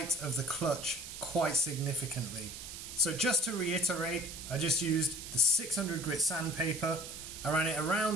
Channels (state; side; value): noise; right; hiss, 10 dB below the sound